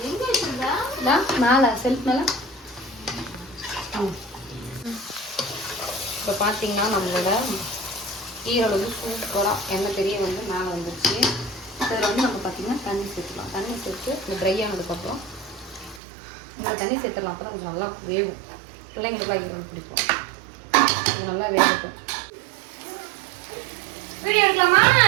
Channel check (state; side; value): drops out; left; at 16.0 s